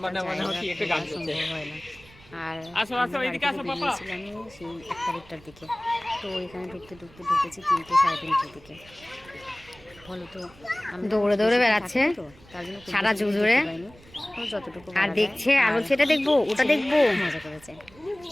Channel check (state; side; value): noise; right; rumble, 24 dB below the sound